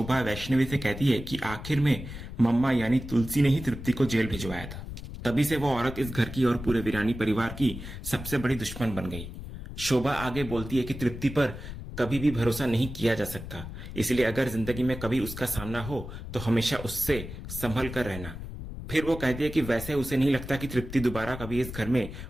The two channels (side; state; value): left; noise; rumble, 10 dB below the sound